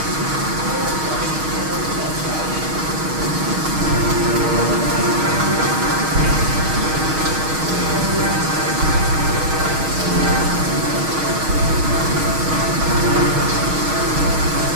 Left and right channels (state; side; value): late; left; 6.4 ms